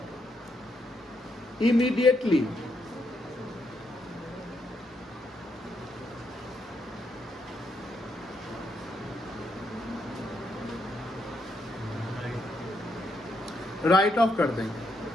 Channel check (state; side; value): normal; both; correlation 0.78